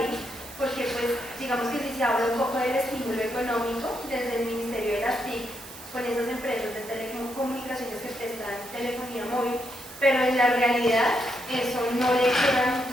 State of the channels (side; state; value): right; noise; hiss, 16 dB below the sound